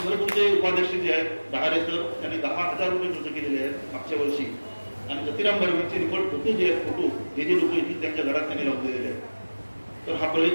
उपाध्यक्ष जे आहेत डहारे सर, त्यांनी 10,000 रुपये खर्च केलेले आहेत मागच्या वर्षी. आणि जतीराम बर्वेचे रिपोर्ट फोटो जे आहेत, फोटो जे लोक येतील त्यांच्या घरात त्यांनी लावून दिलेले आहेत. तर हा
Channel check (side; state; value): both; inverted; correlation -1.00